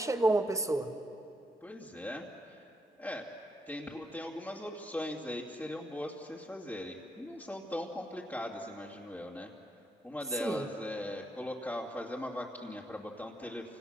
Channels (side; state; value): both; normal; correlation 0.78